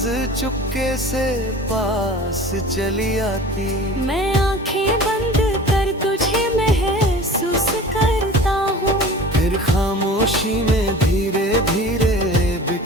चुपके से पास चली आती। मैं आंखें बंद कर तुझे महसूस करता हूँ, फिर खामोशी में धीरे धीरे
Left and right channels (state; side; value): normal; both; correlation 0.40